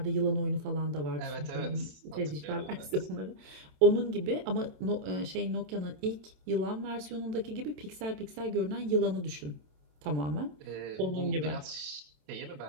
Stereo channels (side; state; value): left; late; 27 ms